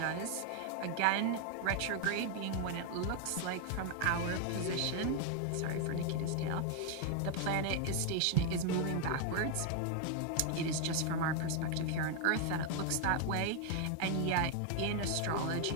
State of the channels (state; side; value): different; both; correlation 0.00